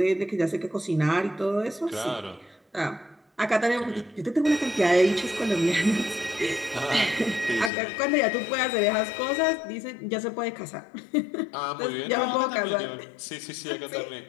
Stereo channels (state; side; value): drops out; right; at 7.7 s